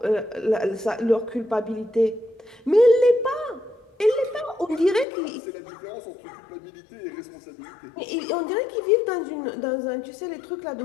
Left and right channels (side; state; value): right; drops out; at 5.1 s